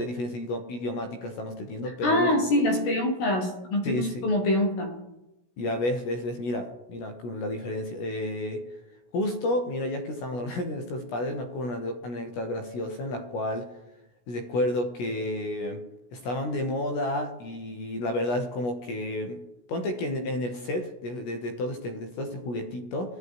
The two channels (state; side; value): late; right; 16 ms